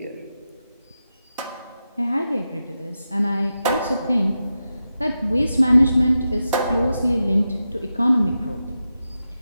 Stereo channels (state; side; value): inverted; both; correlation -0.89